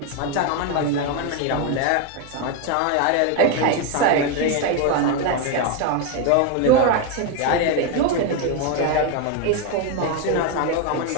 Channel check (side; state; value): both; different; correlation 0.01